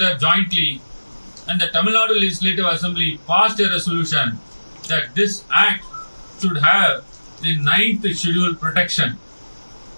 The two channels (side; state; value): both; inverted; correlation -1.00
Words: jointly and the Tamil Nadu Legislative Assembly passed a resolution that this Act should have the 9th schedule protection.